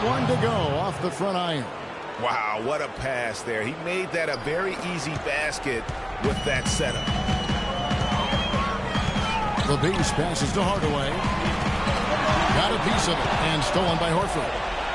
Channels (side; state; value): both; identical; correlation 1.00